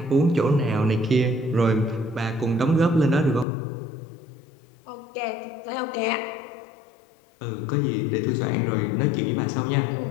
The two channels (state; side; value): drops out; right; at 3.5 s